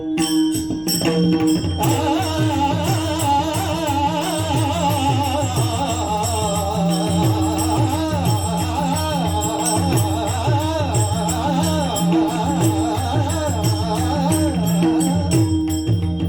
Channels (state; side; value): noise; right; rumble, 23 dB below the sound